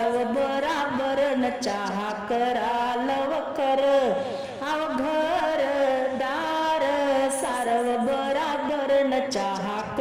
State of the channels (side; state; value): both; identical; correlation 1.00